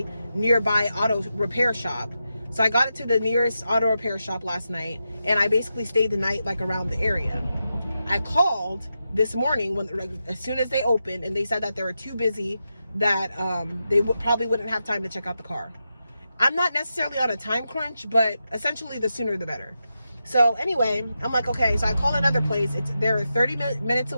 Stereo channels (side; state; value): both; inverted; correlation -0.88